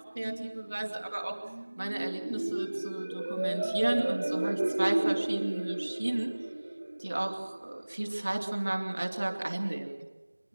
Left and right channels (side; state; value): both; inverted; correlation -1.00